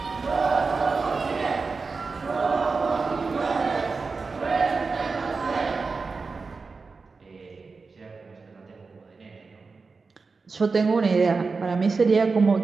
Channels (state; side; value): quieter; left; 4.4 dB